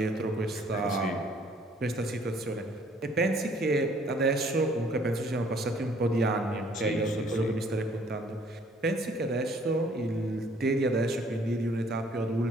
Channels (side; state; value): both; normal; correlation 0.60